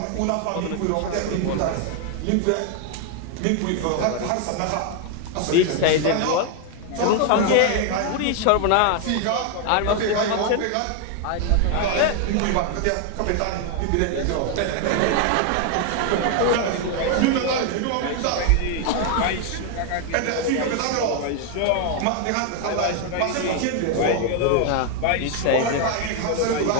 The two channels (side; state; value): both; different; correlation 0.01